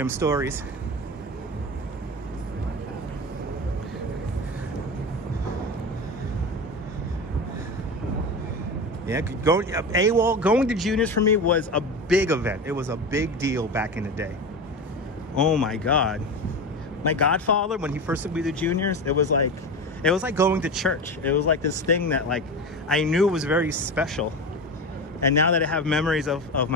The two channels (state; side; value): normal; both; correlation 0.24